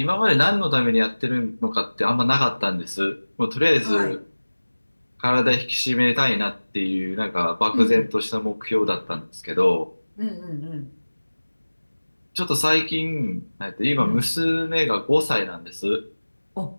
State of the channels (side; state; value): both; inverted; correlation -1.00